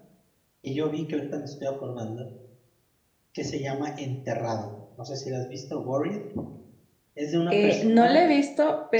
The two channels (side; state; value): both; identical; correlation 1.00